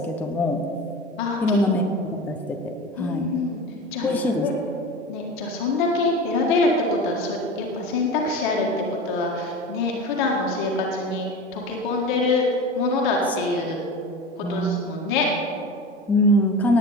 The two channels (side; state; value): both; normal; correlation 0.31